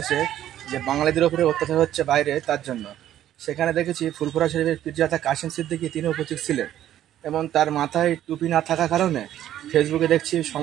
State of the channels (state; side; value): quieter; left; 12.0 dB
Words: যে বাঙালিদের উপরে অত্যাচার হচ্ছে বাইরে, তার জন্য। সেখানে দেখেছি ফুরফুরা শরীফের পীরজাদা কাশিম সিদ্দিকী তিনি উপস্থিত ছিলেন, এবং তার মাথায় টুপি না থাকার কারণে ফেসবুকে দেখছি